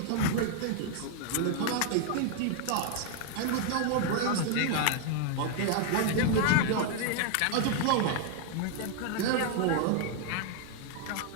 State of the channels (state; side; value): different; both; correlation 0.00